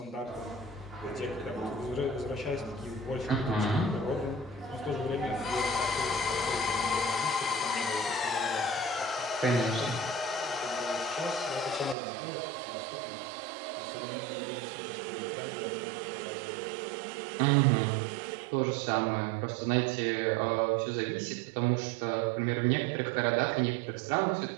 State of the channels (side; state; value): left; drops out; at 12.0 s